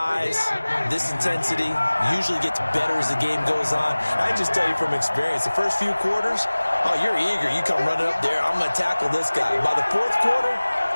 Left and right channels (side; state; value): both; inverted; correlation -1.00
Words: this intensity usually gets better as the game goes on. I just tell you from experience, the first few quarters, oh, you're eager. You come running up there, I'm going to tackle this guy. By the 4th quarter,